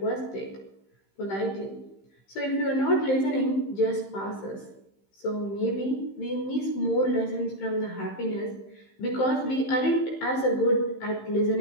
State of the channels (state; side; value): late; right; 15 ms